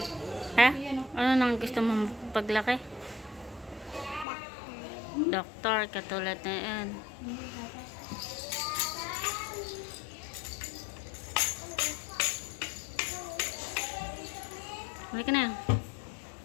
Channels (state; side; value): drops out; right; at 4.2 s